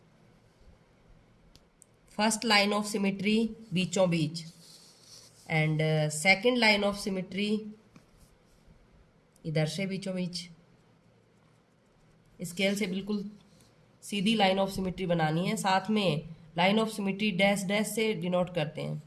फर्स्ट लाइन ऑफ सिमेट्री बीचों बीच, and second line of symmetry इधर से बीचों बीच। स्केल से बिल्कुल सीधी लाइन ऑफ सिमेट्री बनानी है। साथ में line of symmetry dash dash से डिनोट करते हैं।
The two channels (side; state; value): both; identical; correlation 1.00